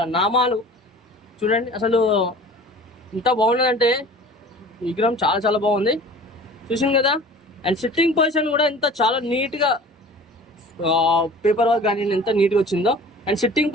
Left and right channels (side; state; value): both; normal; correlation 0.43